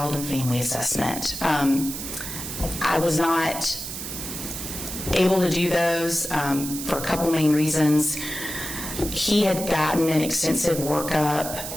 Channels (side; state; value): right; noise; hiss, 7 dB below the sound